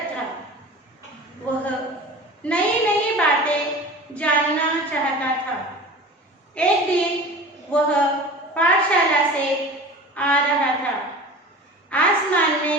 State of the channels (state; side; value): normal; both; correlation 0.37